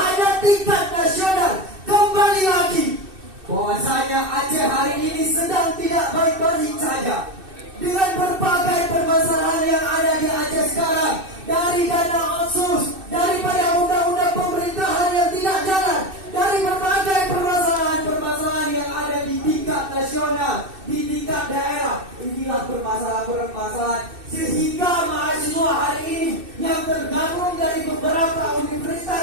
tingkat nasional, kembali lagi bahwasanya Aceh hari ini sedang tidak baik-baik saja. Dengan berbagai permasalahan yang ada di Aceh sekarang, dari dana otsus, daripada undang-undang pemerintahan yang tidak jalan, dari berbagai permasalahan yang ada di tingkat nasional, di tingkat daerah, inilah permasalahan sehingga mahasiswa hari ini yang tergabung dari beberapa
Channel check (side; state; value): left; late; 2.6 ms